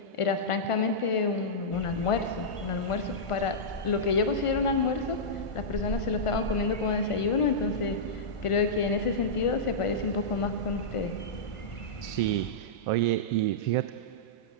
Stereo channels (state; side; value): late; right; 1.5 ms